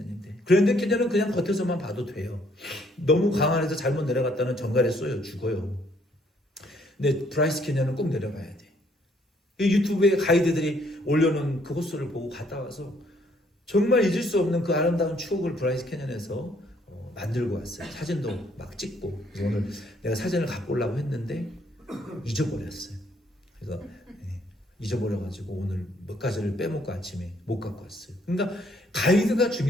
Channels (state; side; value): normal; both; correlation 0.66